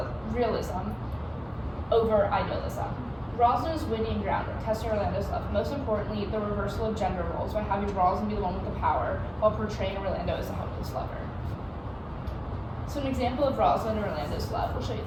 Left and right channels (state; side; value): identical; both; correlation 1.00